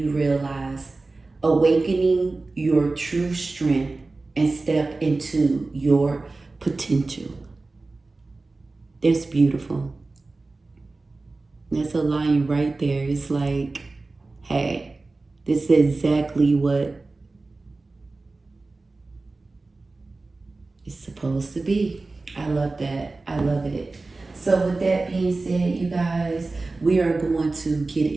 realize. Awakening your true strength and step into your potential. That's beautiful. That's a line right there. It's like, hey, this is exactly what it's supposed to be. I love that. I love it. So with that being said, you guys, we are going to get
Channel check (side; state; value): left; quieter; 3.5 dB